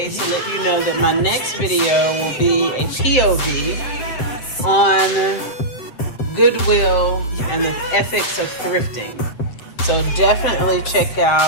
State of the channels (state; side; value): late; right; 7.8 ms